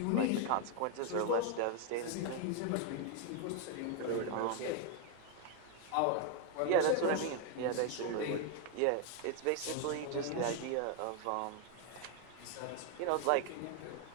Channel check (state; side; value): different; both; correlation 0.01